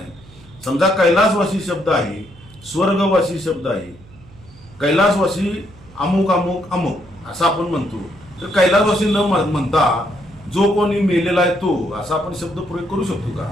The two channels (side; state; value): right; noise; hum, 23 dB below the sound